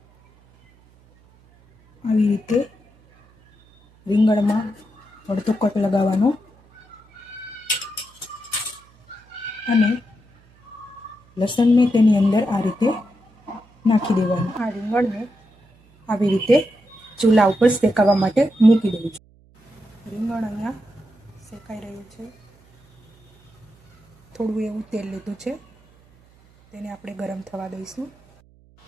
આવી રીતે રીંગણમાં અડધો કટ લગાવવાનો અને લસણને તેની અંદર આ રીતે નાખી દેવાનું. આ રીંગણને આવી રીતે ચૂલા ઉપર શેકાવા માટે મૂકી દઉં છું. રીંગણ અહીંયા શેકાઈ રહ્યું છે. થોડું એવું તેલ લીધું છે, તેને આપણે ગરમ થવા દઈશું.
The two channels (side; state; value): right; noise; hum, 30 dB below the sound